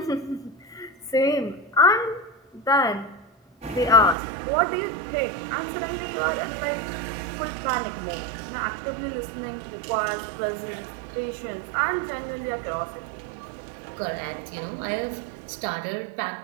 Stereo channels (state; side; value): drops out; left; at 4.2 s